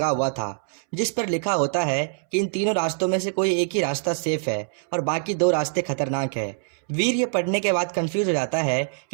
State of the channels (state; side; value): silent; left; 62 dB below the other